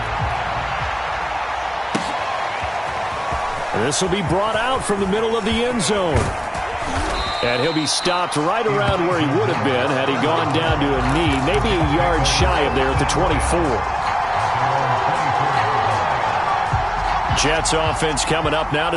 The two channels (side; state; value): both; identical; correlation 1.00